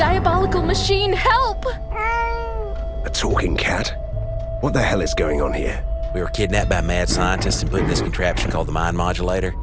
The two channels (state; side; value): identical; both; correlation 1.00